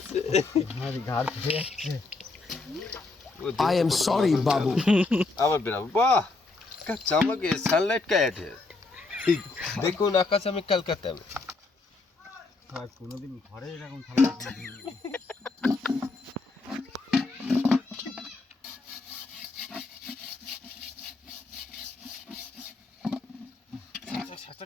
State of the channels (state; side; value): quieter; right; 3.6 dB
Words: से আমার ঘাড় ফেটে যাচ্ছে आई एम सॉरी बाबू अब बेटा वाह क्या चमक है सनलाइट का ऐड है देखो ना आकाश में कलकत्ता में আর কোনোদিন ঘরে এরকম থালা সাচা